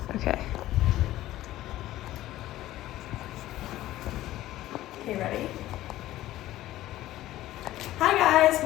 Okay. Okay, ready? Hi guys,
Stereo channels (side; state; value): right; quieter; 15.0 dB